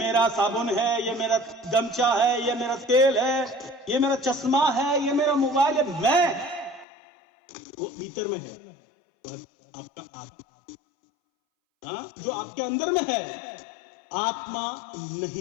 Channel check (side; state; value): right; drops out; at 6.9 s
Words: साबुन है, ये मेरा गमछा है, ये मेरा तेल है, ये मेरा चश्मा है, ये मेरा मोबाइल है, मैं, वो भीतर में है आपका आत्मा। जो आपके अंदर में है, आत्मा